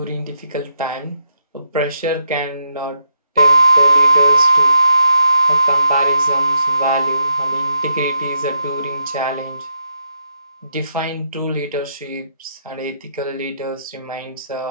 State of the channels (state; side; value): inverted; both; correlation -0.81